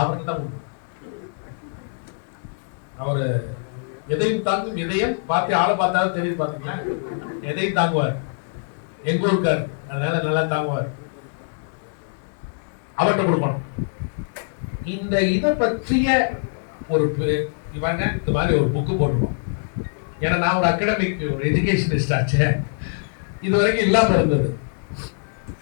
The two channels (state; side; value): silent; right; digital silence